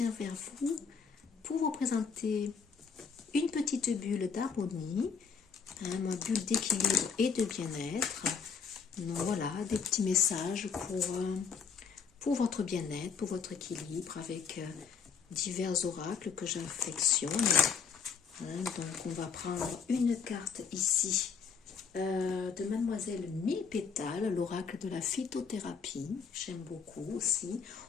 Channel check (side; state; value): right; quieter; 6.0 dB